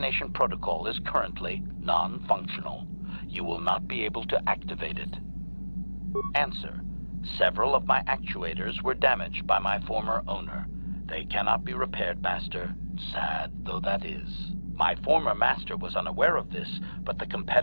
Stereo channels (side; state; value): both; inverted; correlation -1.00